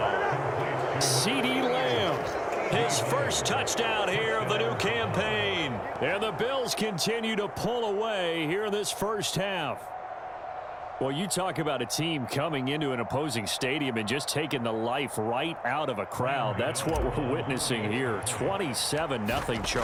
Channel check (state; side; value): identical; both; correlation 1.00